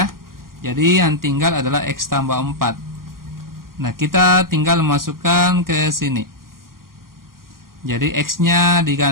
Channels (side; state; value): left; late; 0.92 ms